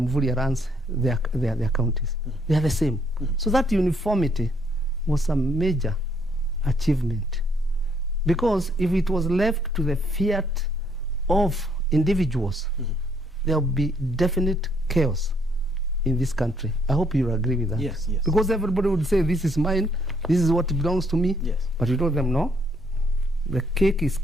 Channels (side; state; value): both; normal; correlation 0.69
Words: runs their counties. They are the same. So that uniformity was a major achievement. Because if it was left to the fiat of individuals, there will be definite chaos in this country. I hope you agree with that. Yes, yes. Because everybody would say, this is mine, this is what belongs to me. Yes. But you told them, no, the cake is